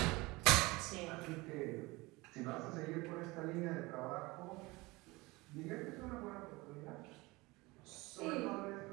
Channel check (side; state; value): left; quieter; 22.6 dB